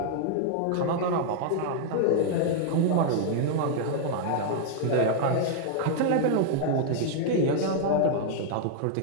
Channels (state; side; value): different; both; correlation -0.01